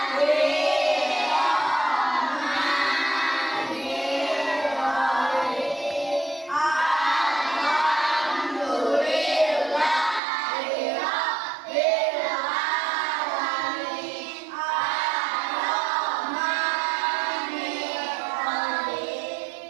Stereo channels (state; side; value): drops out; left; at 10.2 s